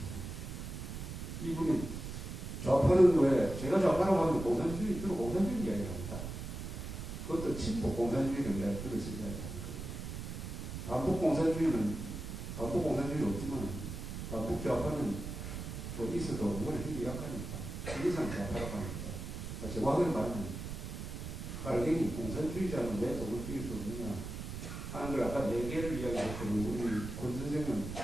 이분이 좌파는 왜, 제가 좌파라고 하면 공산주의, 주로 공산주의 이야기를 합니다. 그것도 친북 공산주의를 내가 들어서 이야기하는 거예요. 반북 공산주의는 없지만, 반북 좌파는 뭐 있어도 뭐가 힘이 약하니까, 시기상 좌파라고 하니까. 정확하게 말하면, 깔갱이 공산주의자는 왜 독을 띄울 수 없느냐 하는 걸 아까 4개를 이야기했거든요. 우리 권 선생은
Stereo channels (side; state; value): right; noise; rumble, 7 dB below the sound